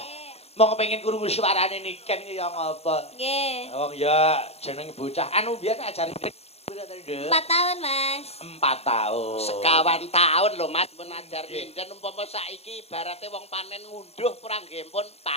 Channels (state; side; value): late; right; 0.30 ms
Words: Mau kepengin krungu suarane niken ki ya ngapa? Nggih. Wong ya jeneng bocah anu biyen ajari 4 tahun, Mas. 4 tahun. Sekawan tahun lho Mas pun ajar nyinden umpama saiki ibarate wong panen ngunduh kurang nggih pun